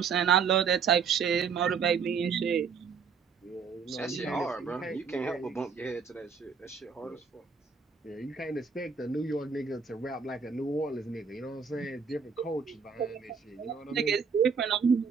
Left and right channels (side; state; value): left; quieter; 6.0 dB